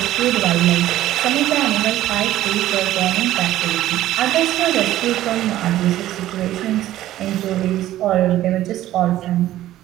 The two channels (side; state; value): left; quieter; 14.0 dB